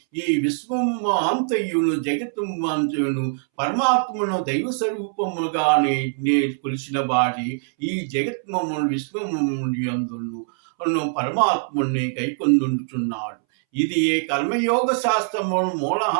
ఈ విశ్వము అంతయును జగత్తు అంతయును పరమాత్మను దైవ స్వరూపముగానే కొలిసిన వాడి ఈ జగత్మము విశ్వము అందును పరమాత్ముని కైకొందుచున్నాడు. ఇది ఏ కర్మయోగ శాస్త్రము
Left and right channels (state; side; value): silent; left; 63 dB below the other